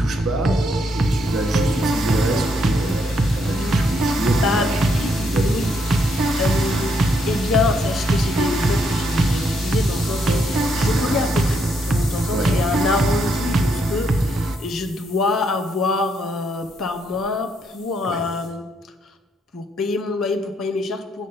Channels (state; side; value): normal; both; correlation 0.75